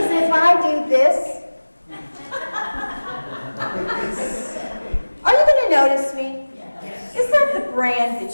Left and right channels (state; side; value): inverted; both; correlation -1.00